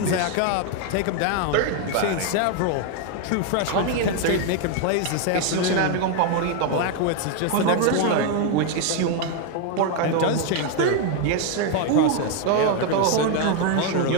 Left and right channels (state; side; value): different; both; correlation 0.01